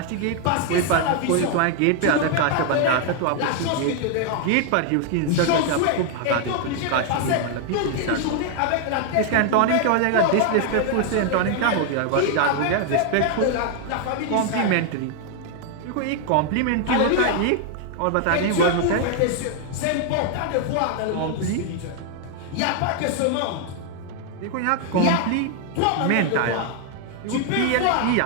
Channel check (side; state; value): both; different; correlation 0.00